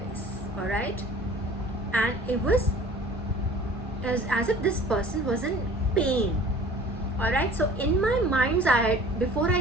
all right, and it was as if this person was in pain. All right, so in my mind's eye, before I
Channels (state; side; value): normal; both; correlation 0.47